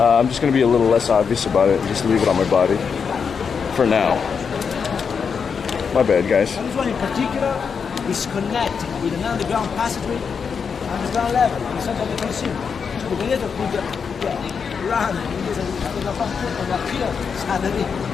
just gonna be a little less obvious about it and just leave it on my body for now. My bad, guys. This one in particular is connected with an underground passageway, underground level, inside of the Colosseum. So the gladiator could run in this and appear suddenly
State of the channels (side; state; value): right; quieter; 6.2 dB